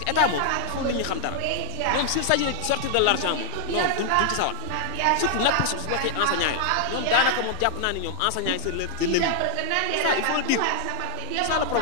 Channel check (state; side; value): different; both; correlation -0.01